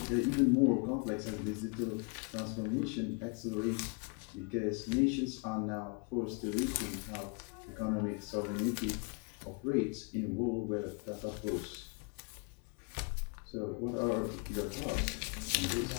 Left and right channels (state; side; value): quieter; right; 35.3 dB